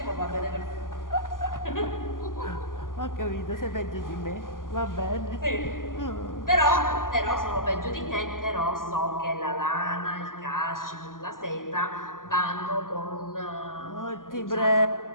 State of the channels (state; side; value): late; right; 0.90 ms